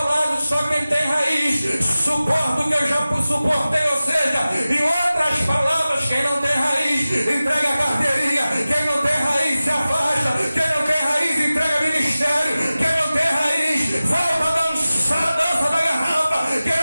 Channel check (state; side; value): inverted; both; correlation -0.96